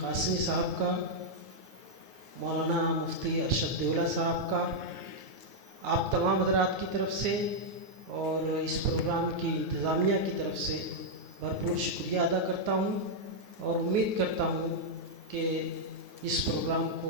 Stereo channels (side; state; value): left; late; 9.5 ms